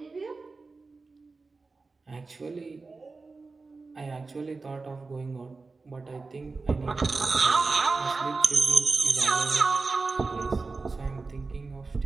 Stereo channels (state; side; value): quieter; left; 3.9 dB